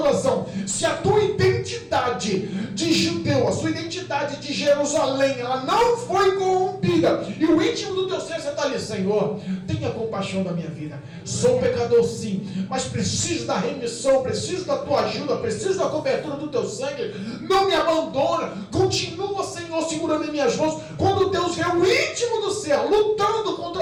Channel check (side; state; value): both; identical; correlation 1.00